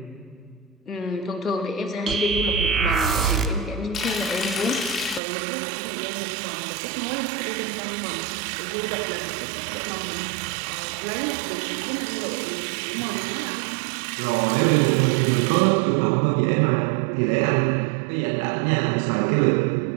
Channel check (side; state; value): left; drops out; at 5.2 s